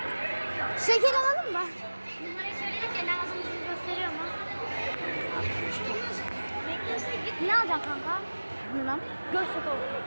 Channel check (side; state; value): both; inverted; correlation -1.00